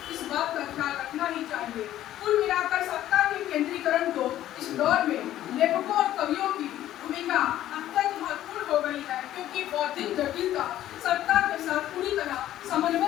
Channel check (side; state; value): right; quieter; 13.0 dB